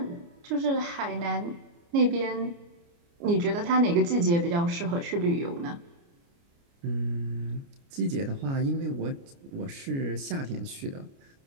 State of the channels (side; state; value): left; late; 29 ms